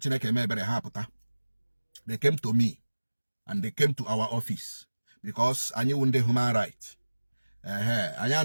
mebere ha pụta. They came to me and they came to our office because anyị wụ ndị human right. Anyị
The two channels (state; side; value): inverted; both; correlation -1.00